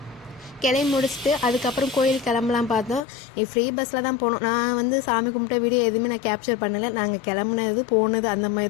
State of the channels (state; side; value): drops out; right; at 3.1 s